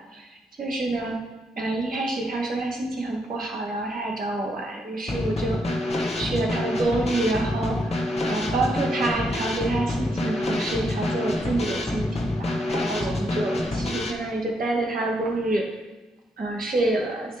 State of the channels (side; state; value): both; normal; correlation 0.76